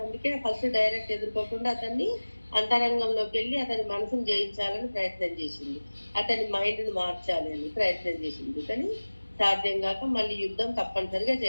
అందుకే ఫస్ట్ డైరెక్ట్ ఎదుర్కోకుండా అతన్ని అంతరంగంలోకి వెళ్ళి అతని మనసును జయించాలని ప్రయత్నం చేసింది, అతని మైండ్ని మార్చాలి అని ప్రయత్నం చేసింది. కానీ సాధ్యం కాక మళ్ళీ యుద్ధం తప్పనిసరిగా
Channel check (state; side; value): inverted; both; correlation -1.00